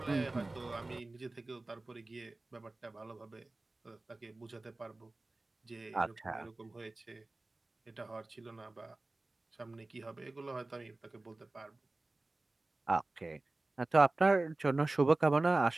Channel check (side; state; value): left; quieter; 3.0 dB